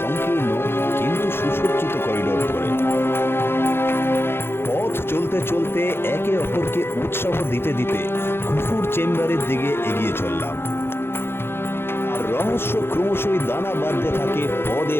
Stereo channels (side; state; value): right; late; 0.11 ms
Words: সংকীর্ণ কিন্তু সুসজ্জিত করিডোর ধরে। পথ চলতে চলতে একে অপরকে উৎসাহ দিতে দিতে খুফুর চেম্বারের দিকে এগিয়ে চললাম। আর রহস্য ক্রমশই দানা বাঁধতে থাকে পদে